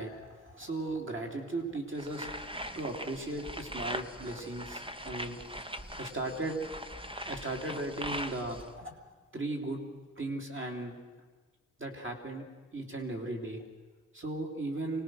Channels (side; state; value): both; normal; correlation 0.35